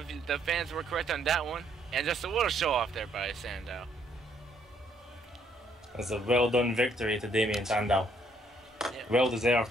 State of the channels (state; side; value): normal; both; correlation 0.68